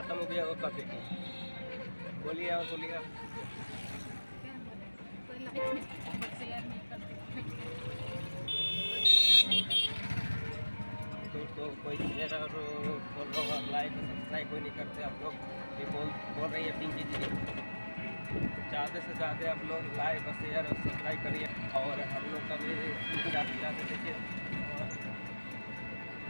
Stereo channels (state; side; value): inverted; both; correlation -1.00